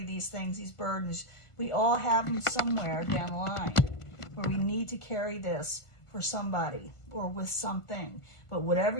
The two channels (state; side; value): late; right; 1.5 ms